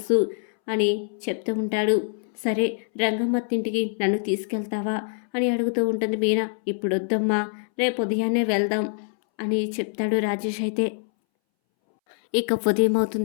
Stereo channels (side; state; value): right; silent; 62 dB below the other